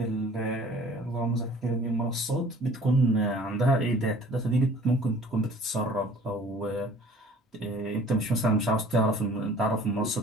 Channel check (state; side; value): normal; both; correlation 0.50